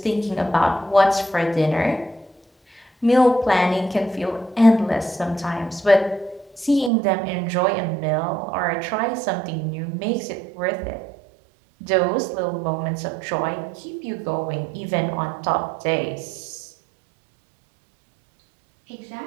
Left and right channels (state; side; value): drops out; left; at 6.9 s